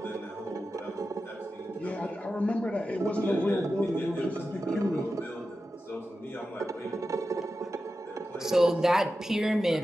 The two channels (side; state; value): both; normal; correlation 0.92